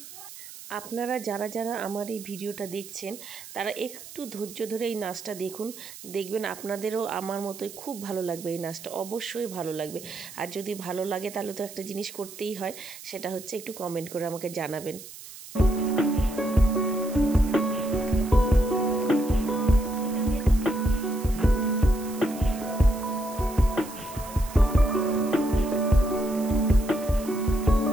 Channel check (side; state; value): right; noise; hiss, 15 dB below the sound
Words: আপনারা যারা আমার এই ভিডিওটা দেখছেন তারা একটু ধৈর্য ধরে এই নাচটা দেখুন, দেখবেন আপনাদেরও আমার মতোই খুব ভালো লাগবে। এই নাচটা অবশ্যই ভালো লাগবে। আর যদি ভালো লাগে তাহলে তো একটা জিনিস করতেই হয়, সেটা হচ্ছে একটু কমেন্ট করে আমাকে জানাবেন।